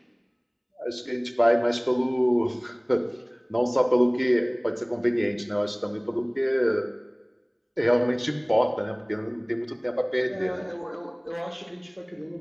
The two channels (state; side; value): identical; both; correlation 1.00